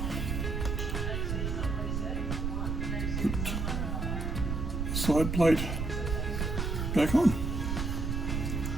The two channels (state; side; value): noise; right; rumble, 1 dB below the sound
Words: put the side plate back on.